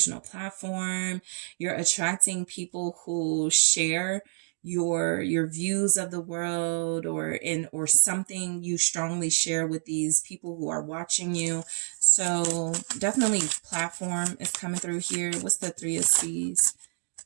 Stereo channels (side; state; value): left; silent; 59 dB below the other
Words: platform. You're attracting people who share your views of the world or something you strongly share with these people who are watching you. So definitely platform is coming through here. What's the Three of Seas?